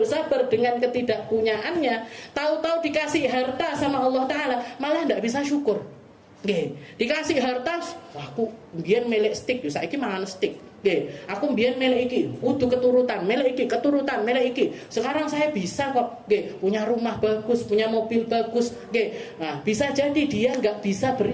dengan ketidakpunyaannya, tahu-tahu dikasih harta sama Allah Ta'ala malah nggak bisa syukur. Dikasih harta, aku biar melek stick, saiki mangan stick. Aku biar melek iki, kudu keturutan, melek iki, keturutan, melek iki. Sekarang saya bisa kok, punya rumah bagus, punya mobil bagus. Nah, bisa jadi dia nggak bisa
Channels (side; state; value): both; identical; correlation 1.00